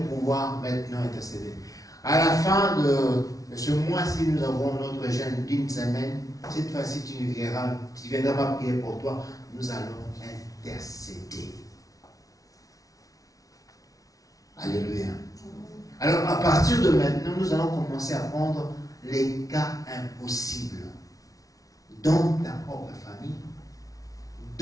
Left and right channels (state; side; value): late; right; 0.17 ms